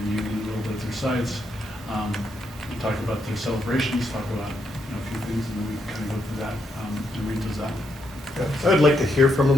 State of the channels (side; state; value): both; normal; correlation 0.79